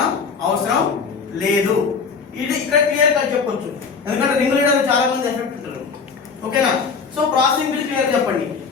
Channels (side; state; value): right; quieter; 5.4 dB